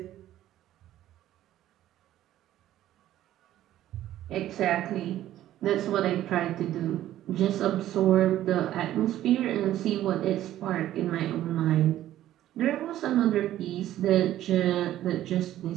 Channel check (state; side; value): quieter; left; 13.1 dB